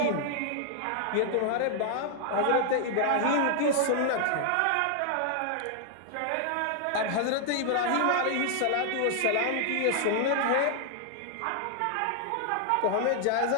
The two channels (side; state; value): both; different; correlation 0.00